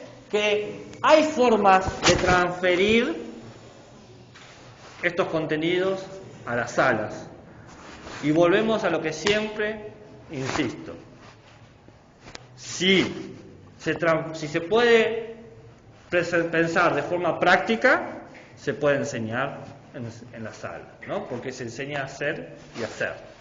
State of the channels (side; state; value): both; identical; correlation 1.00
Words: que hay formas de transferir estos contenidos a las salas. Y volvemos a lo que siempre insisto. Si se puede pensar de forma práctica, se puede enseñar en la sala, ¿no? Porque se enseña a hacer y hacer.